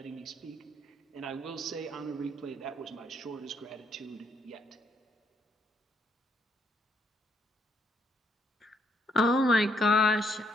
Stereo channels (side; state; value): both; normal; correlation 0.73